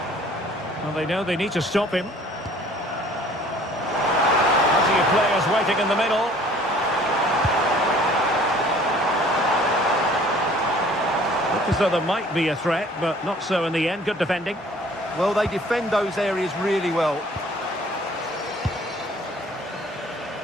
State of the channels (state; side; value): normal; both; correlation 0.53